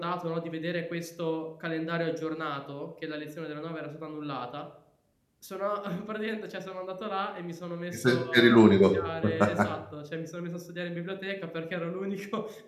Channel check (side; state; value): both; identical; correlation 1.00